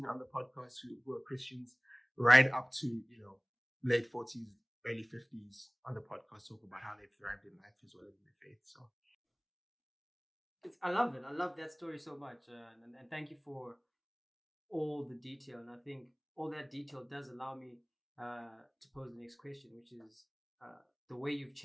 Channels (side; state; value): both; identical; correlation 1.00